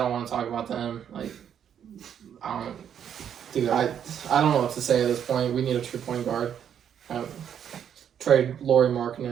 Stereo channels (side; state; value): left; quieter; 8.8 dB